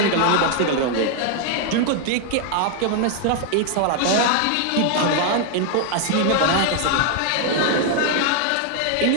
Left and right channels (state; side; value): different; both; correlation 0.00